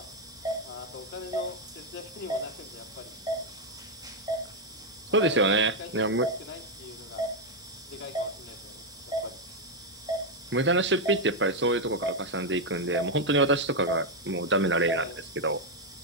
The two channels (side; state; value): both; normal; correlation 0.01